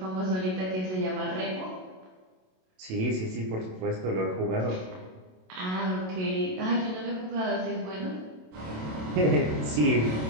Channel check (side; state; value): left; late; 27 ms